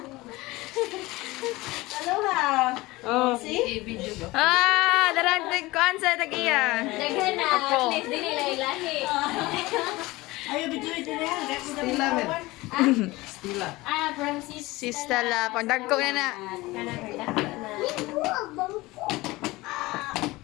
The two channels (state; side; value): quieter; right; 20.5 dB